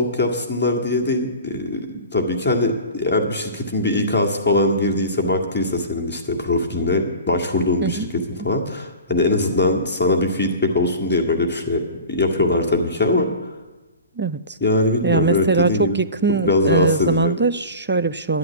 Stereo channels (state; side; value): inverted; both; correlation -0.35